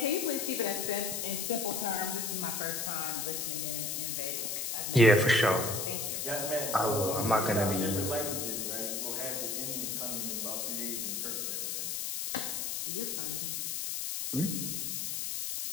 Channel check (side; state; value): left; noise; hiss, 2 dB below the sound